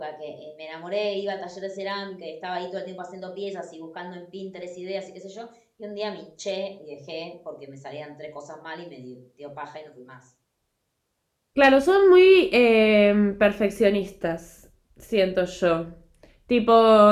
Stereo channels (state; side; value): identical; both; correlation 1.00